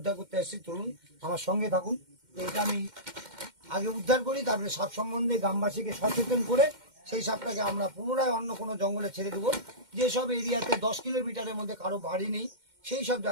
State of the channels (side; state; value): left; late; 2.1 ms